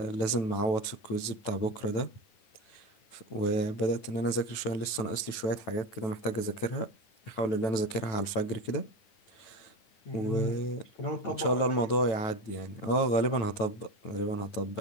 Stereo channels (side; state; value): right; late; 9.1 ms